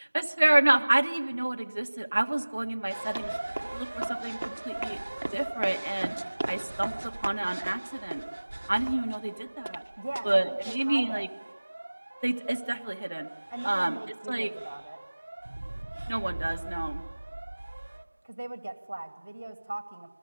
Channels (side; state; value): both; inverted; correlation -1.00